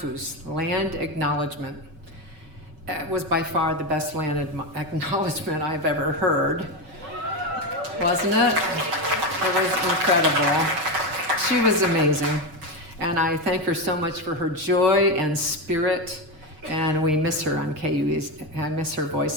land acknowledgement, was by far the best land acknowledgement I've ever heard. Wasn't it? It was incredible. She was amazing. And I thank her so much for her joy and spirit, and we miss her on KUAC. I miss her voice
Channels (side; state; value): left; late; 6.8 ms